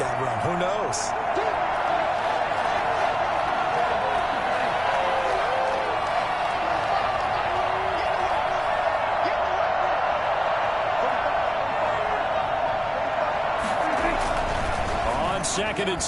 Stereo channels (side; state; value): both; identical; correlation 1.00